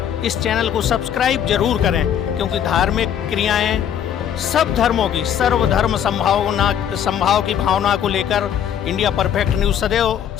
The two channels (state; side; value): quieter; right; 9.3 dB